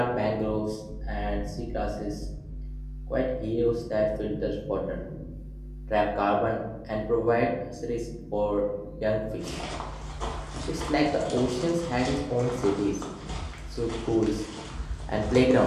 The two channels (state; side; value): identical; both; correlation 1.00